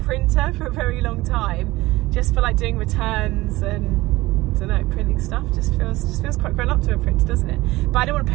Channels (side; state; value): left; quieter; 19.2 dB